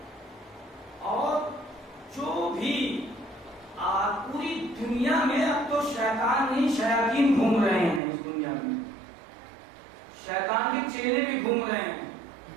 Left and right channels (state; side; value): drops out; left; at 8.0 s